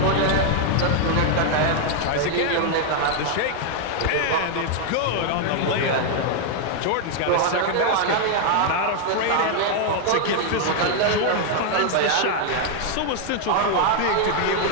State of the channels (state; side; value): different; both; correlation 0.00